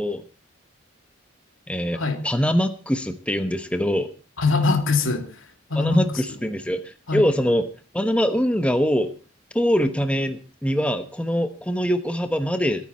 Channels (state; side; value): normal; both; correlation 0.83